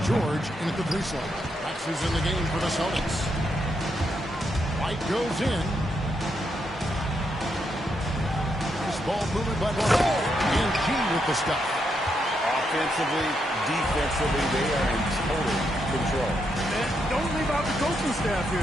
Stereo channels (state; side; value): normal; both; correlation 0.80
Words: George in at the 3 slot. Rex is in the game for the Celtics. White goes in. This ball moving by White. And G with the stuff. Offensively, defensively, they are in total control. And don't leave out the coaching staff